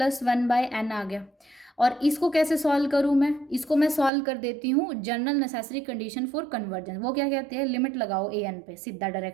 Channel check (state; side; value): drops out; left; at 4.1 s